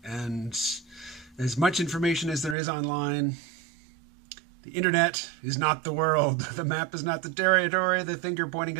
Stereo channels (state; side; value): drops out; left; at 2.6 s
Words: And as much information as there is online, the internet is not the world. The map is not the territory. The finger pointing